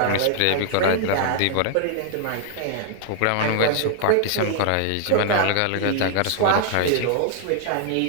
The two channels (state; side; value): different; both; correlation 0.00